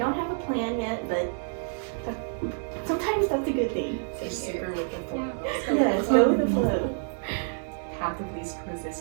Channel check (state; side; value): silent; left; digital silence